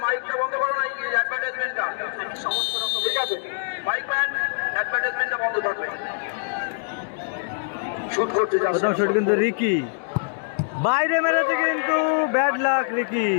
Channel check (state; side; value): silent; right; digital silence